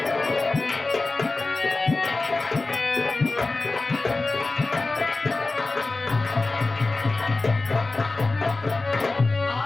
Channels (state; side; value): quieter; right; 3.4 dB